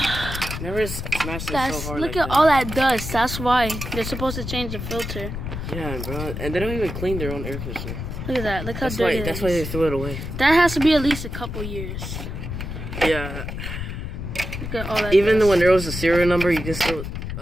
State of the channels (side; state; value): left; noise; rumble, 6 dB below the sound